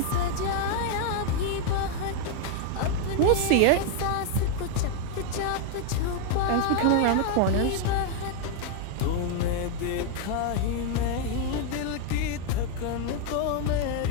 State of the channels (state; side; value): different; both; correlation 0.01